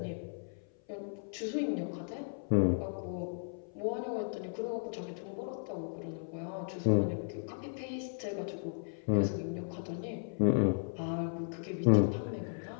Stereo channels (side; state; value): right; silent; 54 dB below the other